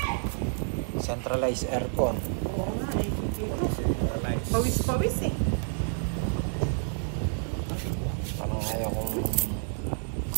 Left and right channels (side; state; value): left; silent; digital silence